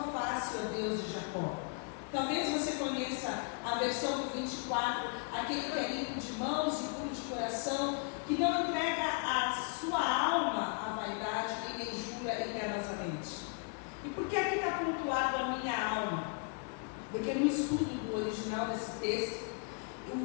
face, ó Deus de Jacó. Talvez você conheça a versão do 24, aquele que é limpo de mãos e puro de coração, que não entrega a sua alma à vaidade e nem jura enganosamente. E por que aqui está pontuado a minha alma? Porque no estudo do original desse texto,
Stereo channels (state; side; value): quieter; right; 37.5 dB